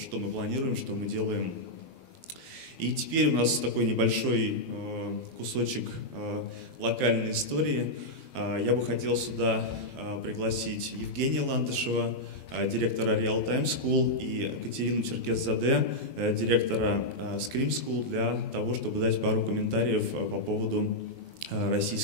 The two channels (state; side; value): late; right; 12 ms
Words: мы планируем, что мы делаем. И теперь у нас такой небольшой кусочек локальной истории. Я бы хотел сюда пригласить Евгения Ландышева, директора Real Time School, и Катерину Черкес-Заде, директора Scream School, для того, чтобы дать пару комментариев по поводу